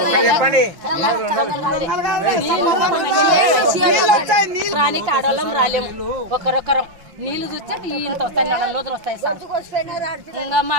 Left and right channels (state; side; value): late; left; 5.7 ms